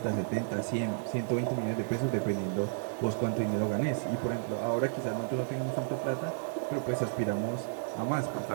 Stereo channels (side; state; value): left; silent; digital silence